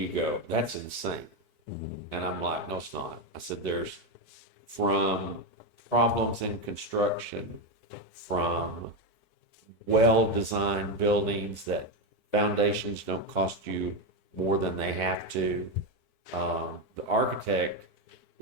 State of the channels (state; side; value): late; right; 4.6 ms